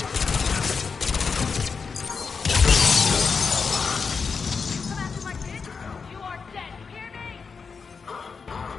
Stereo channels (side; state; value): right; quieter; 5.3 dB